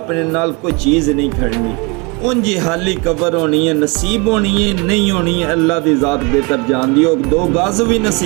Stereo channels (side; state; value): left; quieter; 29.2 dB